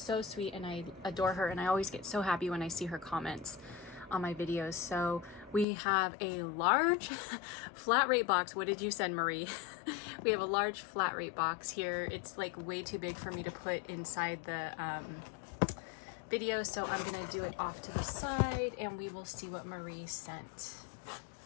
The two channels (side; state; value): right; drops out; at 5.7 s